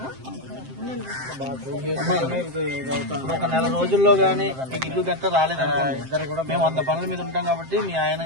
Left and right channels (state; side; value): late; left; 7.6 ms